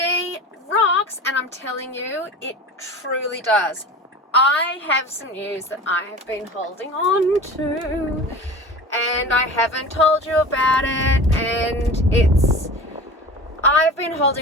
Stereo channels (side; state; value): both; normal; correlation 0.35